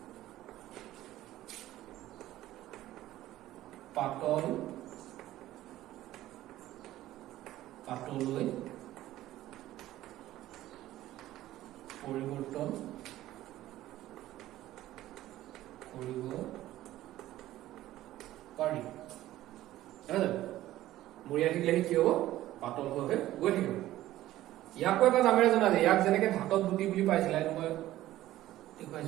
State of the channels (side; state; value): left; quieter; 14.8 dB